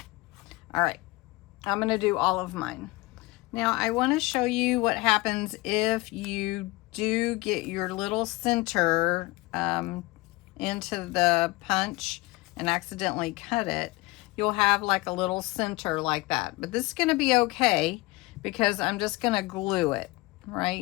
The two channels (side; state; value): right; quieter; 21.9 dB